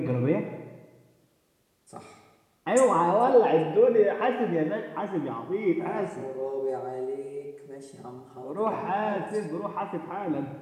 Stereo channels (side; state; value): both; identical; correlation 1.00